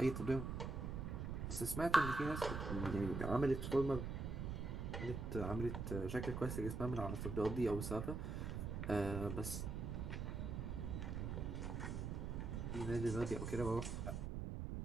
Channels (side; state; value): right; noise; rumble, 3 dB below the sound